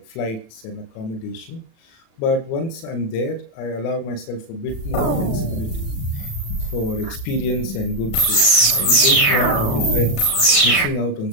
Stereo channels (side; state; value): right; late; 36 ms